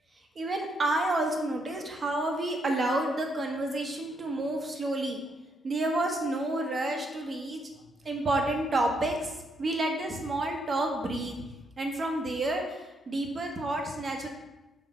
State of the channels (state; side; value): normal; both; correlation 0.75